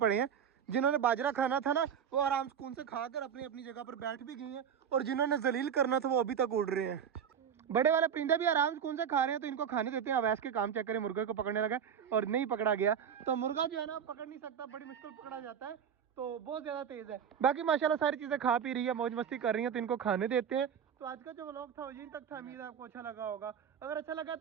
हैं, जिन्होंने बाजरा खाना था ना वो आराम सुकून से खाकर अपनी अपनी जगह पर बैठ भी गए हैं, और जिन्होंने जलील करना था वो अभी तक उड़ रहे हैं। बड़े वाले परिंदे भी आराम सुकून से खा रहे हैं, तो इनको खाने देते हैं। अवैस के काम चेक करें, मुर्गे को पकड़ने लगा और नहीं पकड़ा गया। तो मुर्गा जो है ना पकड़ नहीं सकता, बड़ी मुश्किल पकड़ा जाता है, तो बहुत ज्यादा तेज है। बाकी माशाल्लाह सारी चीजें खा पी रही है, मौज मस्ती कर रही है, तो इनको खाने देते हैं। तो आज का जो व्लॉग था वो यहीं तक था। उम्मीद है आपको अच्छा लगा होगा। अगर अच्छा लगा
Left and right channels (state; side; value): quieter; left; 8.1 dB